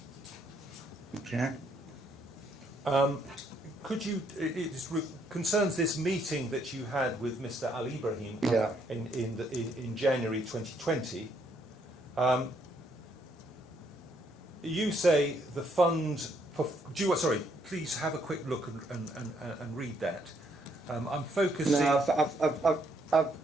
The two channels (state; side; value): normal; both; correlation 0.71